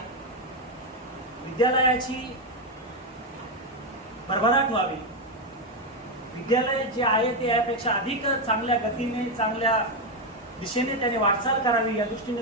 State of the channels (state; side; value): normal; both; correlation 0.06